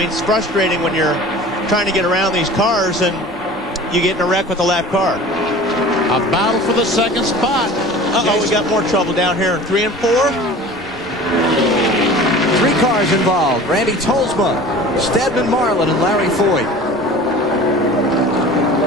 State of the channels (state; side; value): normal; both; correlation 0.41